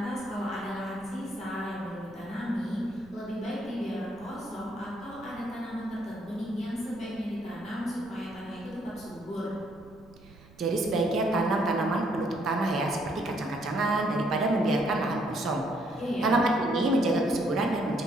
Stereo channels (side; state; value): right; noise; rumble, 23 dB below the sound